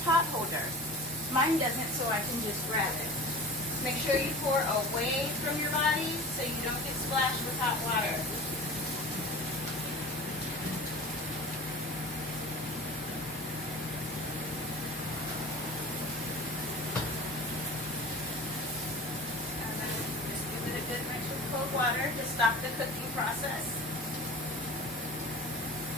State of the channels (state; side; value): normal; both; correlation 0.37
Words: holder. Mine doesn't, so I can just grab it. Make sure you pour away from your body so you don't get splashed with hot water. Water to stop the cooking process.